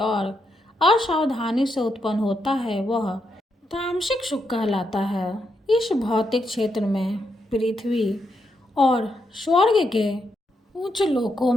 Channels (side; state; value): both; normal; correlation 0.81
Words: असावधानी से उत्पन्न होता है वह तामसिक सुख कहलाता है। इस भौतिक क्षेत्र में पृथ्वी और स्वर्ग के उच्च लोकों